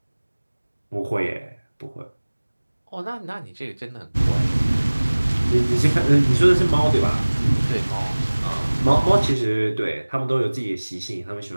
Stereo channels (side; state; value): both; inverted; correlation -1.00